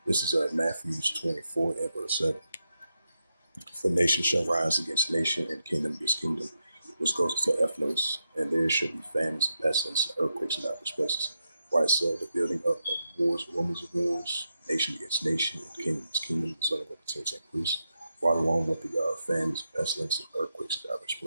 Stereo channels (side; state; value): both; inverted; correlation -0.85